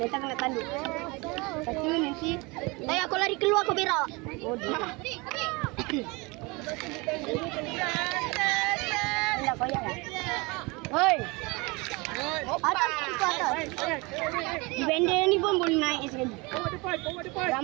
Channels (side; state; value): left; quieter; 26.2 dB